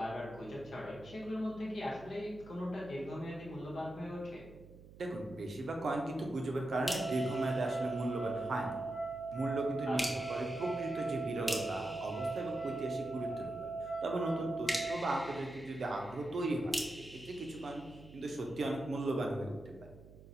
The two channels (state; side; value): noise; right; hum, 18 dB below the sound